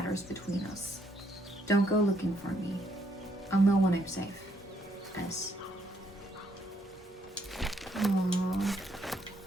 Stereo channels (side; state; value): both; normal; correlation 0.72